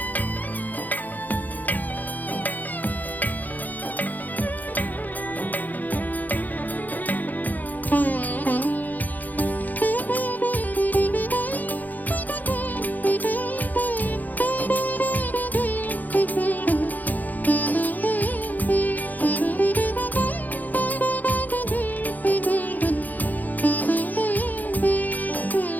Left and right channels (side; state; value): right; late; 0.082 ms